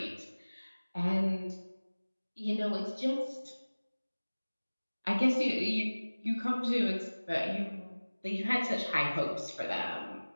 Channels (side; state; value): both; inverted; correlation -1.00